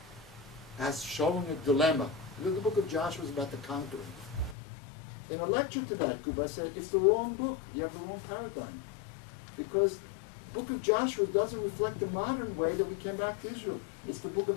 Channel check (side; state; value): right; drops out; at 4.5 s